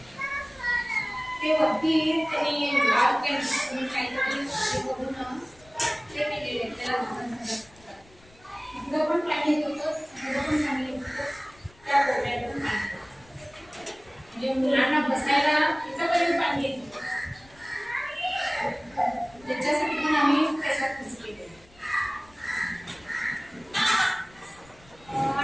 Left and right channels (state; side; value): noise; left; rumble, 27 dB below the sound